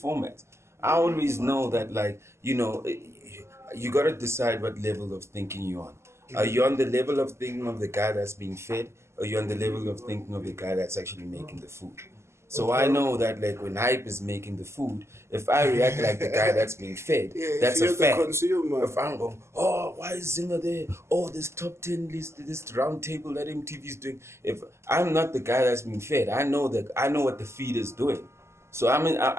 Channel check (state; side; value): late; left; 0.13 ms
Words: I always know that, like, you know, you got to decide what level of thinking you're on. Are you on the level of thinking of the guy that's being fed, or are you on the level of thinking of the guy that's actually making the food? So I know that, like, when Hype is making the food, if I react like the guy that's being fed, that's a fact. If I'm going, oh, why is Zinger there? Oh, this top 10 list, this round table that MTV's doing. If I'm not the guy that's being fed, I know what the feed is doing. So